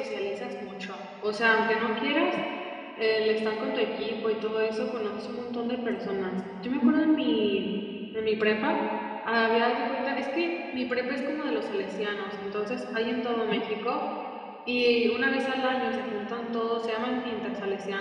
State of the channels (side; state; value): both; identical; correlation 1.00